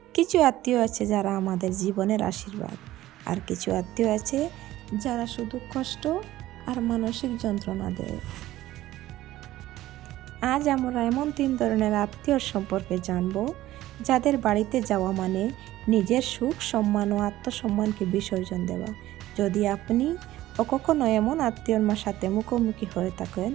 কিছু আত্মীয় আছে যারা আমাদের জীবনের আশীর্বাদ, আর কিছু আত্মীয় আছে যারা শুধু কষ্ট আর মানসিক যন্ত্রণা দেয়। আজ আমরা এমন 3 ধরনের আত্মীয় সম্পর্কে জানব, যাদের বাড়িতে যাওয়া মানে নিজের সুখ, সম্মান ও আত্মসম্মানকে বিসর্জন দেওয়া। যদি আপনি কখনো এমন আত্মীয়র সাথে মুখোমুখি হয়ে থাকেন,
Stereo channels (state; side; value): quieter; left; 15.2 dB